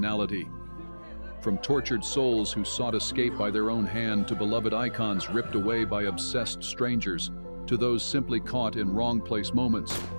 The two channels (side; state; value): both; inverted; correlation -1.00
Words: From tortured souls who sought escape by their own hand to beloved icons ripped away by obsessed strangers, to those simply caught in wrong place moments,